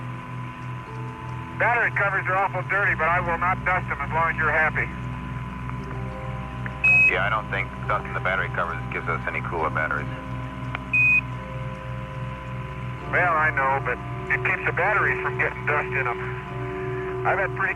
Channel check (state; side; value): identical; both; correlation 1.00